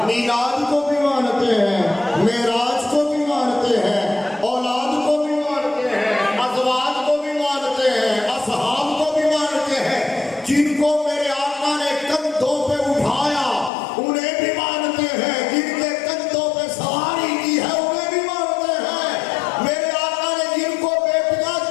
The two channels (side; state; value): right; drops out; at 13.7 s